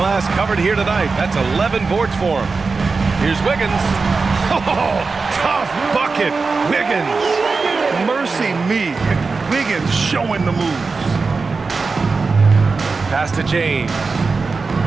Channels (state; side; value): quieter; left; 4.3 dB